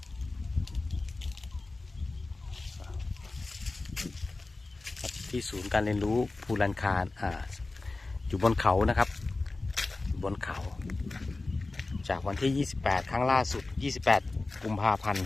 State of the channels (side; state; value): right; quieter; 3.3 dB